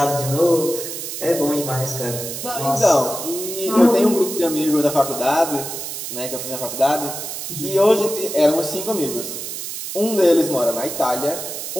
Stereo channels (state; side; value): noise; right; hiss, 7 dB below the sound